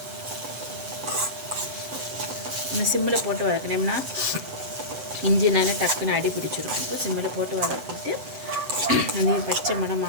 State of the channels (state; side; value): late; left; 7.9 ms